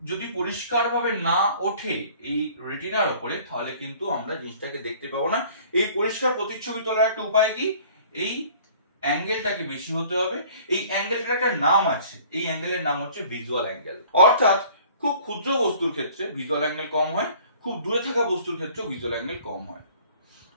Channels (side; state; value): both; inverted; correlation -0.52